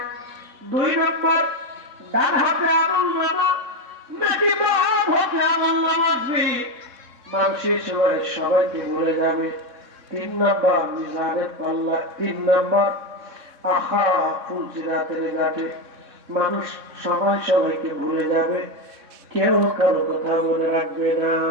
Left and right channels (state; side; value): late; left; 3.6 ms